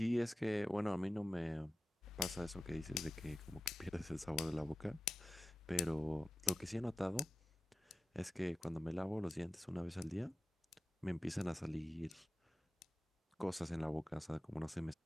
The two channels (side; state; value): both; normal; correlation 0.93